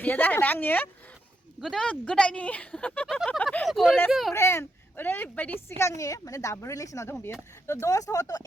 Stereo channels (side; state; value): both; normal; correlation 0.82